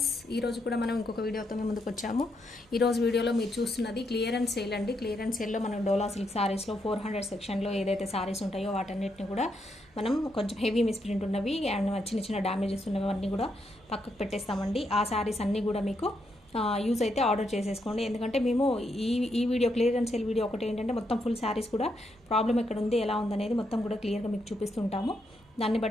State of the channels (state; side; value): normal; both; correlation 0.79